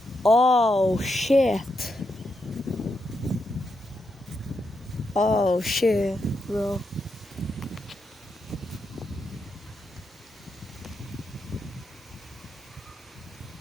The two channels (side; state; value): both; normal; correlation 0.84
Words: Oh shit. Oh shit, bro.